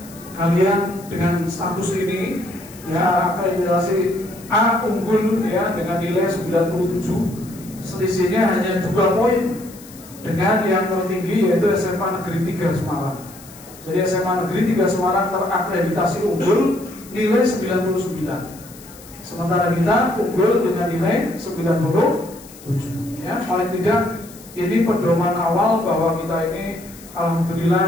kalian dengan status ini ya akreditasi A unggul ya dengan nilai 97, selisihnya hanya 2 poin dengan yang tertinggi yaitu SMA Negeri 3 Semarang. Jadi SMA Negeri 3 Semarang terakreditasi unggul nilai 99, sementara kita unggul dengan nilai 97. Ya, paling tidak ini pedoman awal bahwa kita ini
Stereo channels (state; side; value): noise; left; hiss, 20 dB below the sound